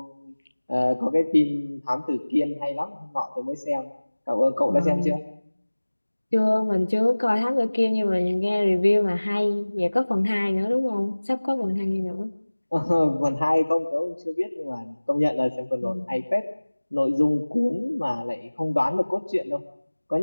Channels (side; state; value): both; inverted; correlation -1.00